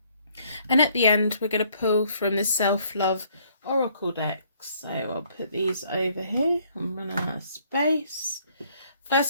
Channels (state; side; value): inverted; both; correlation -0.65